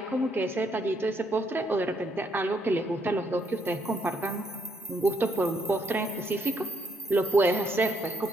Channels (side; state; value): both; normal; correlation 0.73